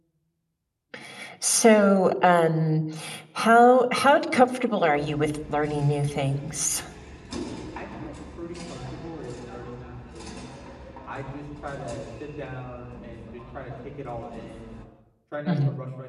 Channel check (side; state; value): both; identical; correlation 1.00